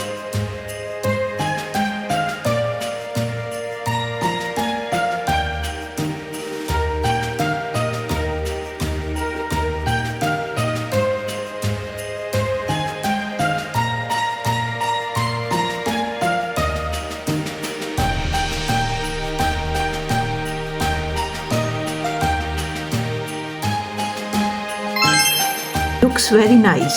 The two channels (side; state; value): both; identical; correlation 1.00